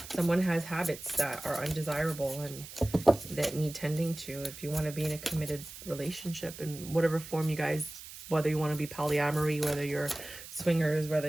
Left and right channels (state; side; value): noise; right; hiss, 14 dB below the sound